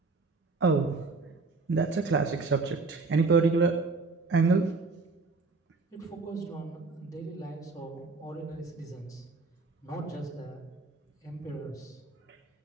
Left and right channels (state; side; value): quieter; left; 3.9 dB